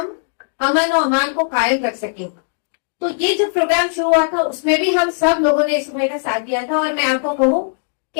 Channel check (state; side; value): silent; right; digital silence